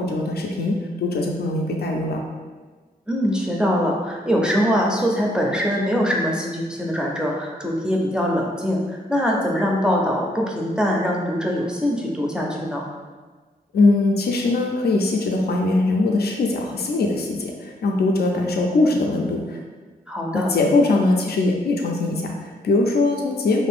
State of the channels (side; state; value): both; normal; correlation 0.71